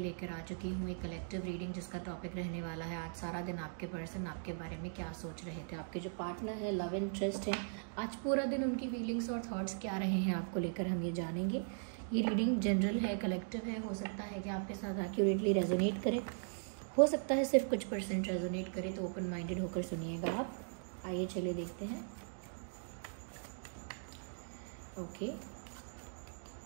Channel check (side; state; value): left; silent; digital silence